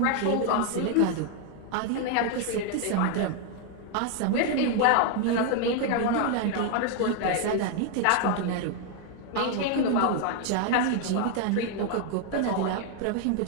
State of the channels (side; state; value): both; different; correlation 0.00